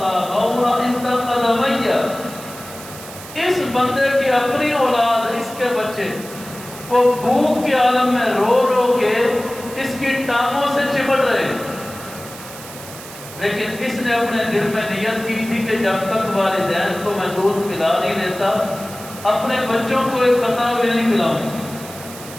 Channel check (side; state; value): right; noise; hiss, 15 dB below the sound